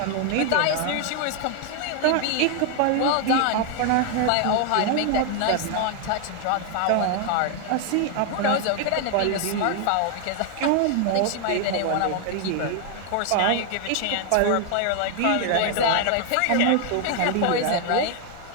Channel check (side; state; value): both; different; correlation 0.00